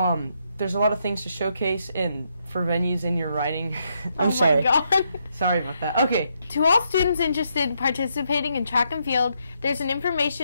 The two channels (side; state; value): both; inverted; correlation -0.78